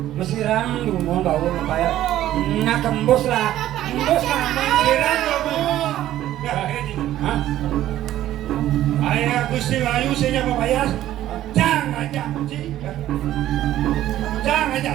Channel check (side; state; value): left; quieter; 13.2 dB